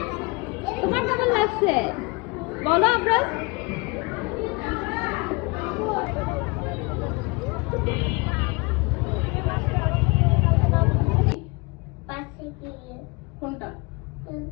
তোমার কেমন লাগছে বলো আমরা। কোনটা?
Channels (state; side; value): quieter; right; 27.7 dB